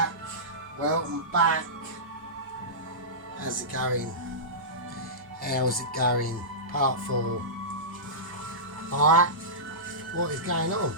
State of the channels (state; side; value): normal; both; correlation -0.18